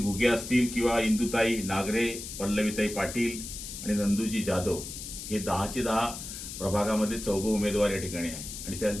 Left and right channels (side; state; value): left; noise; hiss, 9 dB below the sound